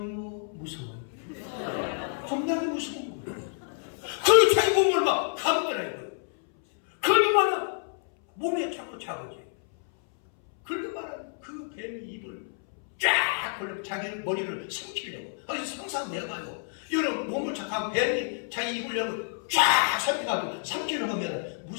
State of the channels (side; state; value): right; silent; 59 dB below the other